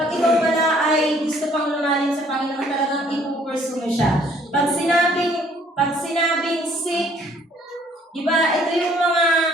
ikaw pala ay gusto pang lumalim sa Panginoon, talagang ipupursue mo siya. Pag sinabing sick, di ba, ito yung mga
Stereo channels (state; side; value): normal; both; correlation 0.61